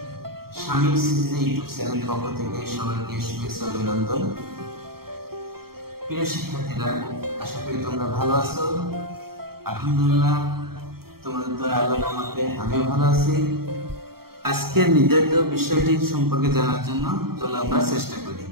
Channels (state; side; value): late; left; 0.94 ms